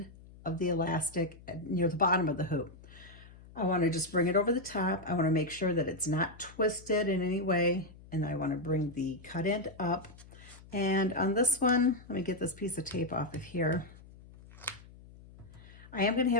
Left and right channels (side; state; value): left; noise; hum, 20 dB below the sound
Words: of the elastic near the bottom of the hoop. I want to just bring it over the top. I want to make sure that it's not twisted in any way, and I want to bring the cut end up. And on this one, let me get this piece of tape off of here. I am going to